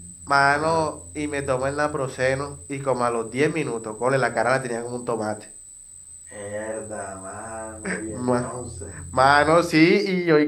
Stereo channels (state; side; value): identical; both; correlation 1.00